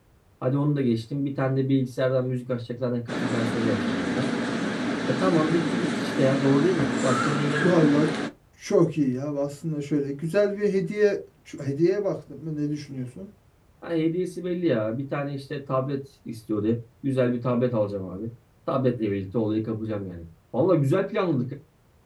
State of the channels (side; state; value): both; identical; correlation 1.00